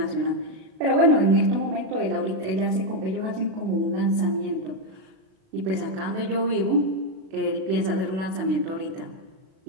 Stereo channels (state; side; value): late; left; 37 ms